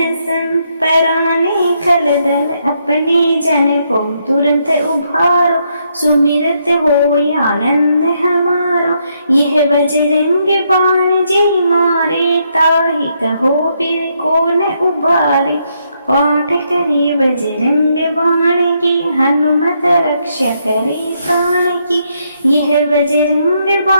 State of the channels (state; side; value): inverted; both; correlation -0.76